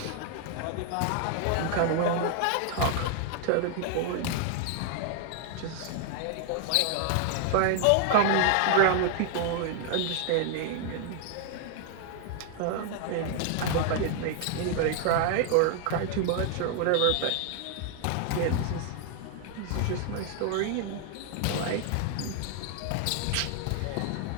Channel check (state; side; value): different; both; correlation 0.00